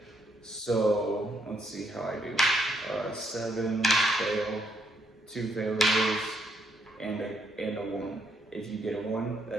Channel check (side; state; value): both; normal; correlation 0.74